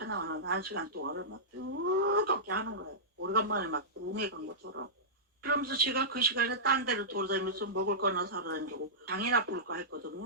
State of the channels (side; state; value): both; normal; correlation -0.15